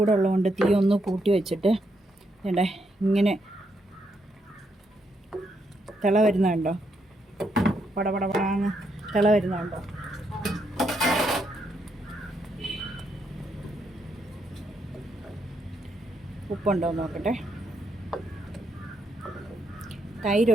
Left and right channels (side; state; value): both; normal; correlation 0.78